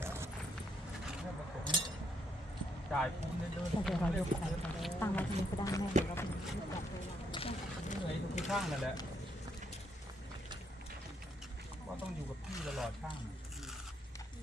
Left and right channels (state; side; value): normal; both; correlation 0.73